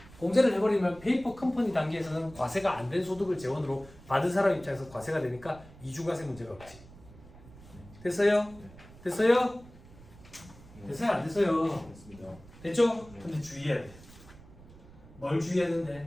공제를 해버리면 페이퍼 컴퍼니 단계에서는 과세가 안 된 소득을 재원으로 받은 사람 입장에서 과세가 되니까 이중과세 문제가 없지. 됐어요? 됐어요? 됐어요? 안 됐어요? 됐습니다. 됐죠? 근데 주의해야 돼. 뭘 주의해야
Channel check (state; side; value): noise; right; rumble, 20 dB below the sound